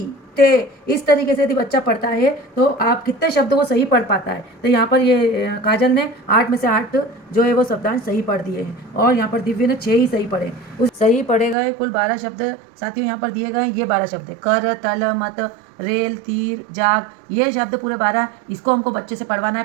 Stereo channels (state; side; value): drops out; left; at 11.6 s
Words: ते, इस तरीके से यदि बच्चा पढ़ता है तो आप कितने शब्दों को सही पढ़ पाता है। तो यहाँ पर ये काजल ने 8 में से 8 जो है वो शब्दांश सही पढ़ दिए हैं और यहाँ पर दिव्य ने 6 ही सही पढ़े। उस सही पढ़े गए कुल 12 शब्द साथियों यहाँ पर दिए गए। ये 12 शब्द है, कर, तल, मत, रेल, तीर, जाग, ये शब्द पूरे 12। इसको हमको बच्चे से पढ़वाना